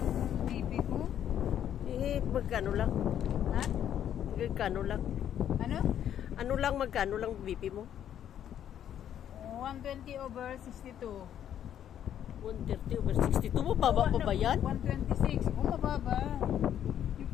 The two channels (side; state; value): right; quieter; 10.1 dB